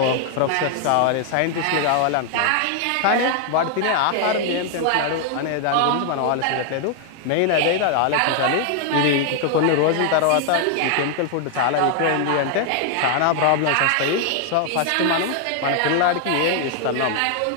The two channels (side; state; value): both; different; correlation 0.00